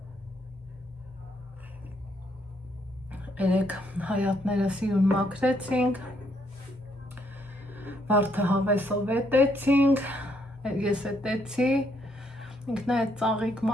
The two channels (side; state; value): both; normal; correlation 0.72